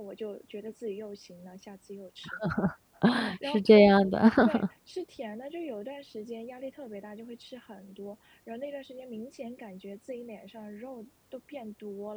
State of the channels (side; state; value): both; identical; correlation 1.00